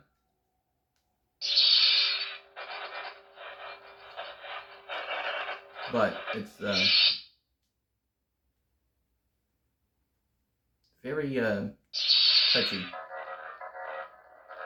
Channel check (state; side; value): identical; both; correlation 1.00